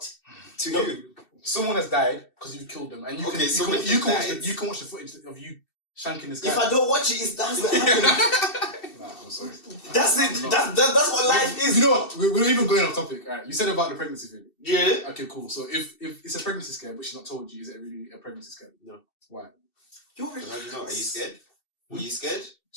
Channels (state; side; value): late; right; 2.7 ms